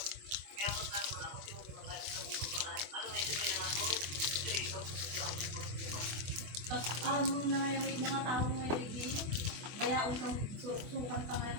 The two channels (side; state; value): left; late; 24 ms